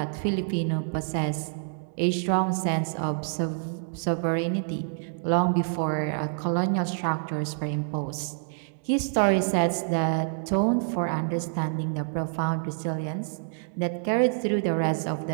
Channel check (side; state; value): left; silent; digital silence